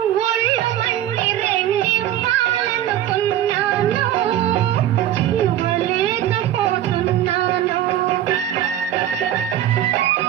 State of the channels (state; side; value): quieter; left; 12.0 dB